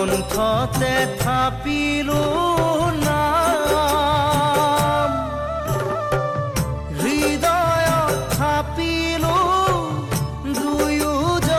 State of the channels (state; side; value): identical; both; correlation 1.00